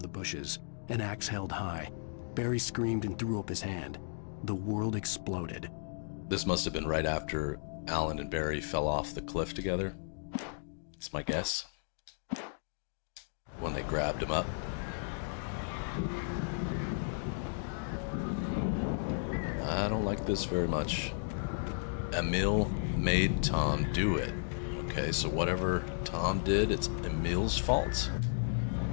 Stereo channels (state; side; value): silent; right; digital silence